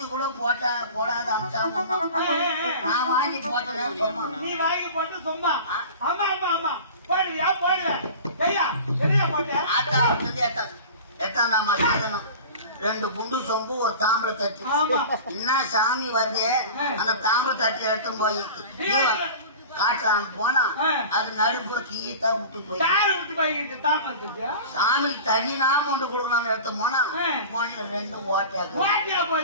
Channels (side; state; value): both; inverted; correlation -0.37